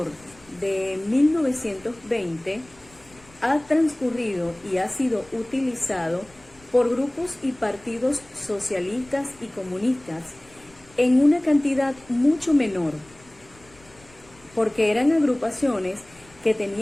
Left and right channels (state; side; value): noise; left; rumble, 27 dB below the sound